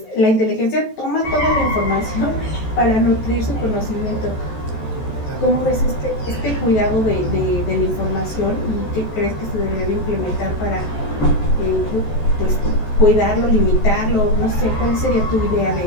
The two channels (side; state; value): right; late; 14 ms